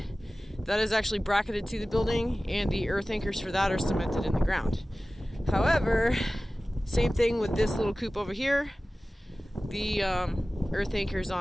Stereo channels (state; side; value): normal; both; correlation 0.97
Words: that is actually bracketed to the building, and the earth anchors for that are cemented in the ground. However, same thing with this little coop over here. The earth anchors